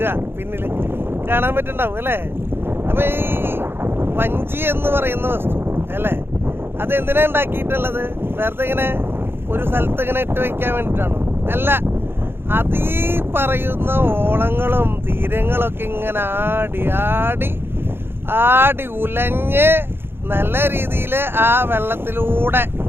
പിന്നിൽ കാണാൻ പറ്റുന്നുണ്ടാവും അല്ലേ. അപ്പൊ ഈ വഞ്ചി എന്ന് പറയുന്ന വസ്തു അല്ലേ, അത് എന്തിനാ ഉണ്ടാക്കിയിട്ടുള്ളത്? വെറുതെ ഇങ്ങനെ ഒരു സ്ഥലത്ത് ഇങ്ങനെ ഇട്ട് വെക്കാൻ വേണ്ടിയിട്ടാണോ? അല്ല, അത് ഈ പറയുന്ന ഓളങ്ങളും തീരങ്ങളൊക്കെ ഇങ്ങനെ ആടി ആടി ആടി ഉലഞ്ഞ് നല്ല രീതിയിൽ ആ വെള്ളത്തിലൂടെ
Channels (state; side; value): late; left; 0.11 ms